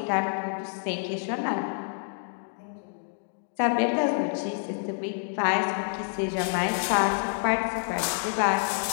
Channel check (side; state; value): right; silent; digital silence